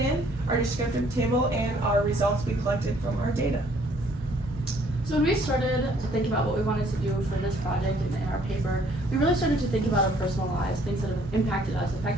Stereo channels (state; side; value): normal; both; correlation 0.62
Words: our descriptive table, and our results we collected from our data. So when we started to think about what we wanted to do for this project and in our paper, we really started to think about our personal lives, things that have impacted us,